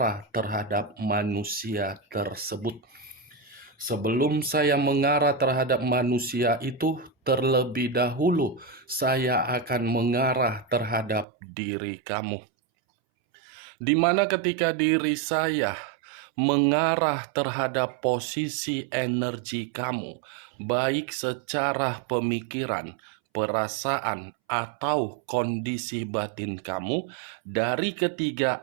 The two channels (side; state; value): left; drops out; at 11.2 s